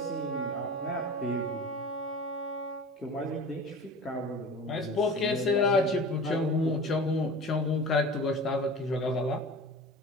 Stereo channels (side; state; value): both; normal; correlation 0.37